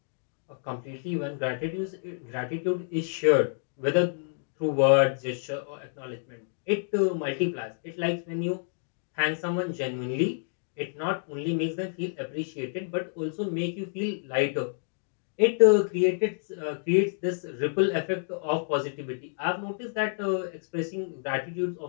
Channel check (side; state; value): right; silent; digital silence